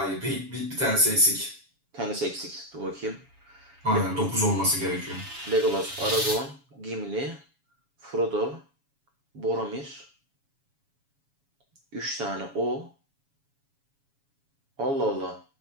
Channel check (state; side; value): late; left; 7.2 ms